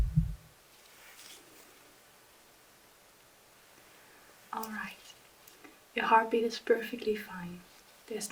Alright, your heartbeat is perfectly fine. There's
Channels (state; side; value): identical; both; correlation 1.00